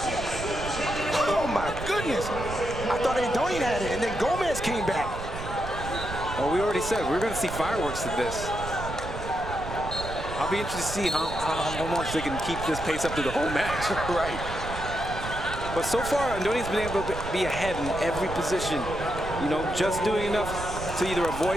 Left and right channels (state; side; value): noise; right; rumble, 8 dB below the sound